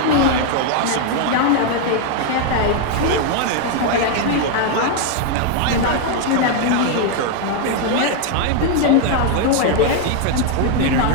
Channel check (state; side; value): different; both; correlation 0.00